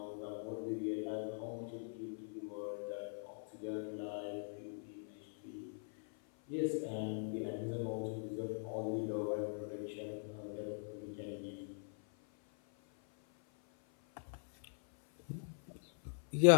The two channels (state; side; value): silent; right; 50 dB below the other